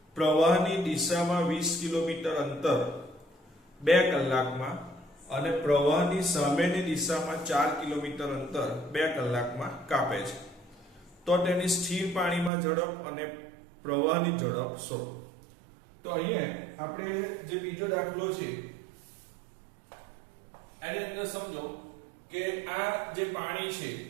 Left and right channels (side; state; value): left; drops out; at 12.5 s